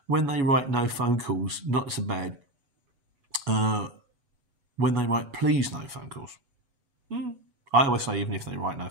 when they write no phone calls, not so bad. When they write please no phone calls. I always say, even if they write no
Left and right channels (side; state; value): left; late; 8.1 ms